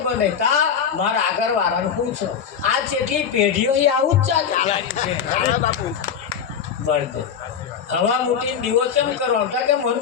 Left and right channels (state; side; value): quieter; right; 7.5 dB